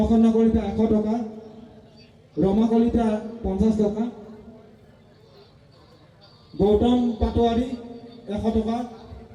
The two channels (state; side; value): identical; both; correlation 1.00